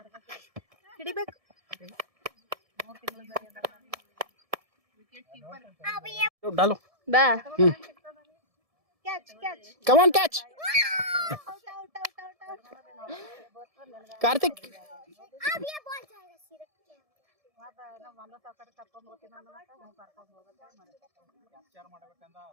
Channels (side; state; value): left; late; 1.7 ms